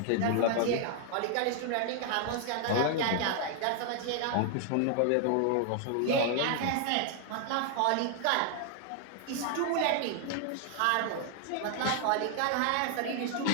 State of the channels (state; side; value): different; both; correlation 0.00